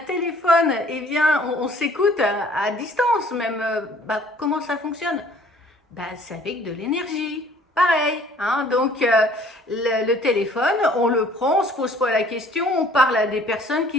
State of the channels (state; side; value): normal; both; correlation 0.55